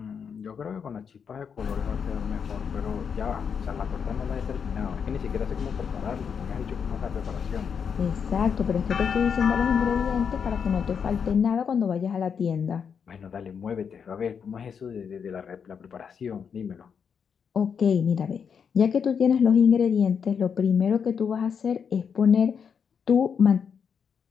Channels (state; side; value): quieter; right; 6.8 dB